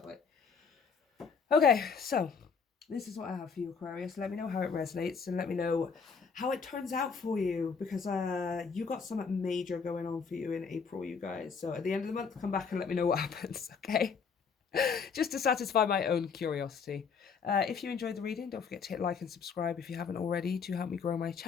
way. Okay, so this is what I have for you, Aquarius. Let me know how it resonates and let me know how it turns out for you, because you got something major going on for you in April, you guys. So at the end of the month, come back and let me know what happens, okay? Just to satisfy my own curiosity. If you enjoyed the reading, don't forget to hit like and subscribe if you haven't already to help me grow my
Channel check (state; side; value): quieter; right; 5.8 dB